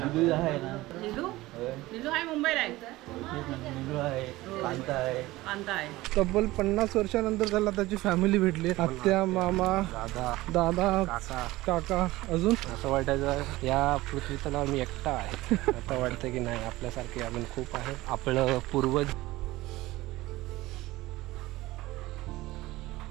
तब्बल 50 वर्षानंतर त्याला त्याची फॅमिली भेटली. आत्या, मामा, दादा, काका. अजून असं वाटायचं या पृथ्वीतला मी एकटा आहे. आता वाटतं की नाही, आपल्यासारखे अजून खूप आहे. आपलं पूर्वज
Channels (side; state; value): left; quieter; 18.5 dB